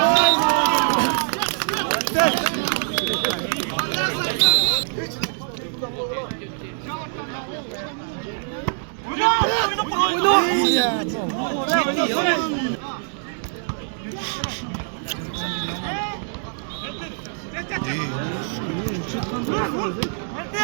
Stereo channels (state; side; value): silent; left; 63 dB below the other